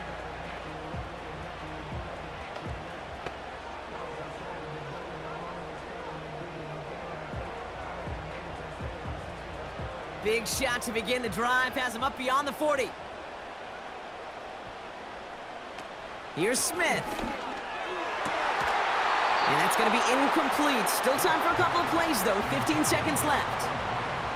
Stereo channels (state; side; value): identical; both; correlation 1.00